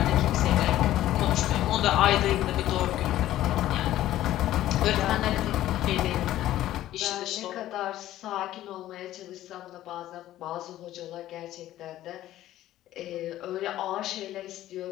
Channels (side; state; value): right; quieter; 13.8 dB